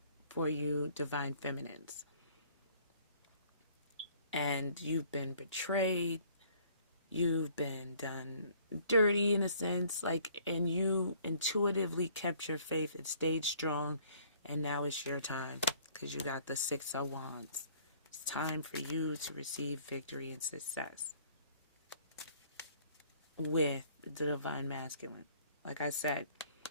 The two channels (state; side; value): inverted; both; correlation -0.58